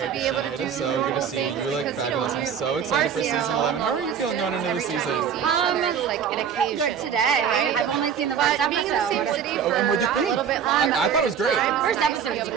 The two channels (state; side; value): quieter; left; 7.8 dB